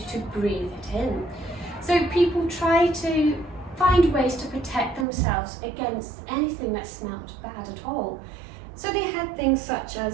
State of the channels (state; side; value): drops out; left; at 5.1 s